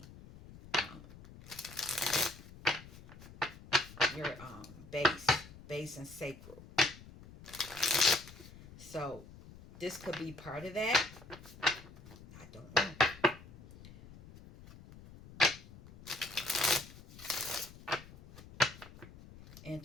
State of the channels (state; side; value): noise; left; rumble, 18 dB below the sound